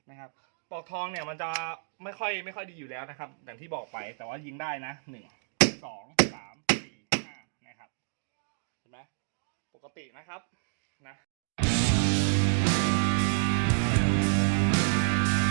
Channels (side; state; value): left; silent; digital silence